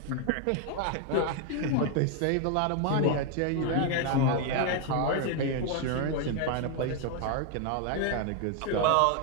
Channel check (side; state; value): both; different; correlation 0.01